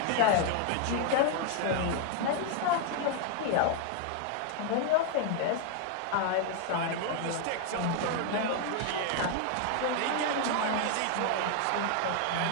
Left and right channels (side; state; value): both; different; correlation 0.00